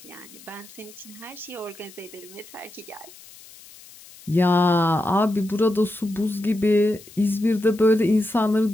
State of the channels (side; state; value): left; noise; hiss, 21 dB below the sound